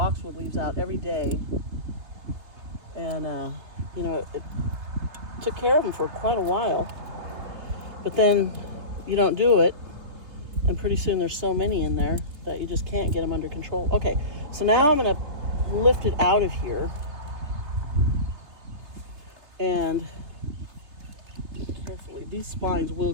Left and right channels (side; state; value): left; late; 3.4 ms